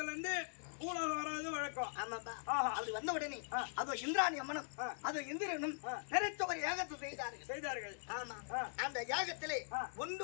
இருந்து பூலோகம் வராது வழக்கம். ஆமாப்பா. அப்படி வந்த உடனே அதோ இந்திராணி அம்மனும் அதோ இந்திரனும் பெருத்த ஒரு யாகத்தை செய்தார்கள். ஆமா. அந்த யாகத்திலே ஒன்று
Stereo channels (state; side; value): silent; right; digital silence